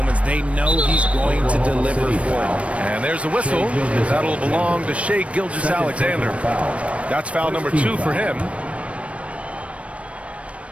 They know he's going to deliver for them. And there's a whistle. That'll belong to Shea Gilgeous-Alexander. That's foul number 2 for him.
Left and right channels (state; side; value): late; left; 0.063 ms